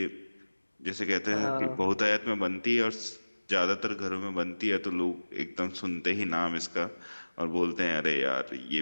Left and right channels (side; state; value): both; inverted; correlation -1.00